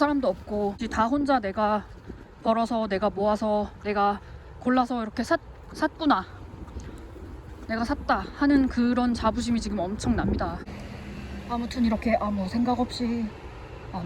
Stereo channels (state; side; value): identical; both; correlation 1.00